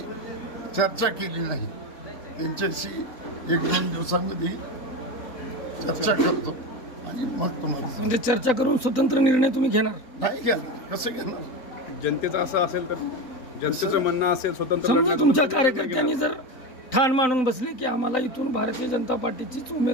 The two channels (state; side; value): late; right; 3.9 ms